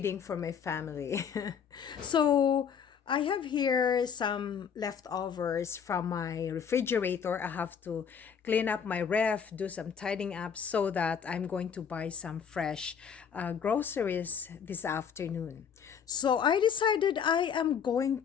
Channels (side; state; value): right; quieter; 7.3 dB